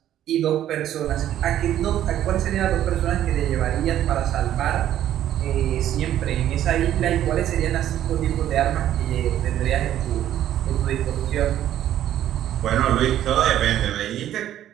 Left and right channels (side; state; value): left; quieter; 11.8 dB